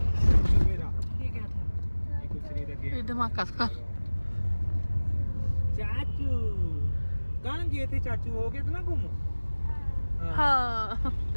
मेरा, ये क्या था? ये कुछ नहीं लगे। ये धमाका था। चाचू कहाँ गए थे? चाचू हो गए थे ना गुम। हाँ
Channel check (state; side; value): inverted; both; correlation -1.00